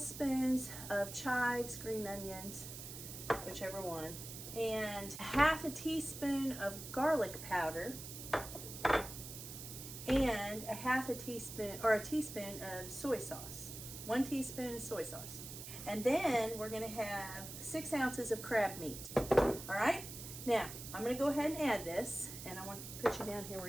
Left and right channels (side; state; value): right; noise; hiss, 10 dB below the sound